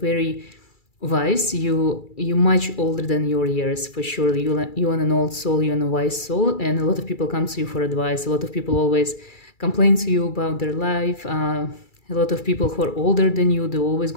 wise. You're much older than your years, for sure. You're an old soul, you're a wise soul, and a lot of people come to you for advice. A lot of people always complain to you about their life. A lot of people who are older than you, they always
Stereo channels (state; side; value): late; right; 2.3 ms